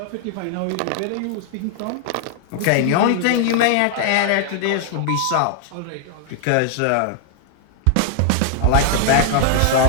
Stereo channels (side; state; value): both; different; correlation 0.00